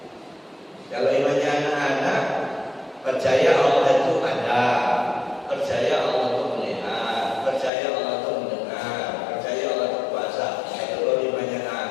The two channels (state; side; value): drops out; right; at 7.7 s